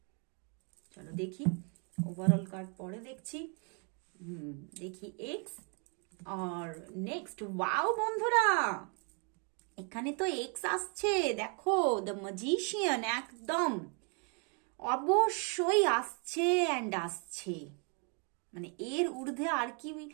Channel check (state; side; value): quieter; left; 37.0 dB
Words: চলো দেখি। ওভারঅল কার্ড পরে দেখছি। দেখি এক্স আর নেক্সট। ওয়াও বন্ধুরা, এখানে তো এক্স আসছে। দেখো দ্য ম্যাজিশিয়ান, একদম অবশ্যই আসছে অ্যান্ড আসছে। মানে এর ঊর্ধ্বে আর কি